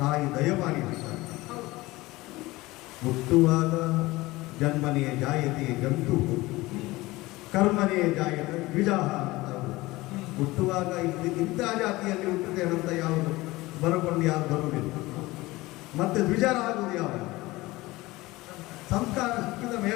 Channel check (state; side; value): quieter; right; 20.0 dB